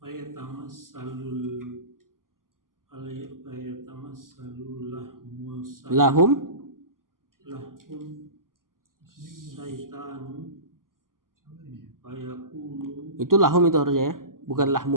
Lahum saitanu fayaqulu. Itu lahum itu harusnya ya, bukan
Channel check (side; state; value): left; late; 0.91 ms